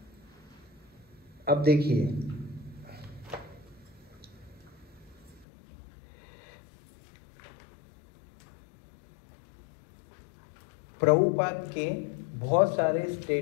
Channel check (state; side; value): drops out; right; at 5.5 s